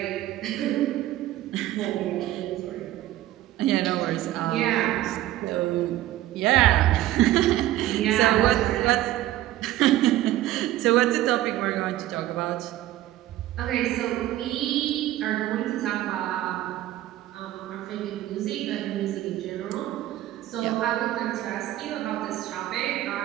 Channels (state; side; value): quieter; left; 14.6 dB